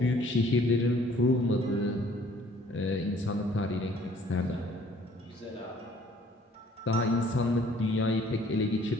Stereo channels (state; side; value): normal; both; correlation 0.57